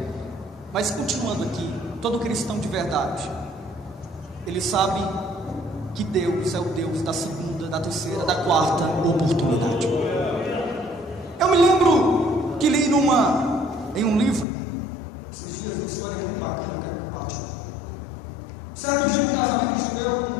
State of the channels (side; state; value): right; drops out; at 14.5 s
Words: Mas continuando aqui, todo cristão de verdade, ele sabe que Deus é o Deus da segunda, da terceira, da quarta oportunidade. Eu me lembro que li em um livro esses dias uma história muito bacana, eu quero compartilhar. Certo dia, num casamento judeu,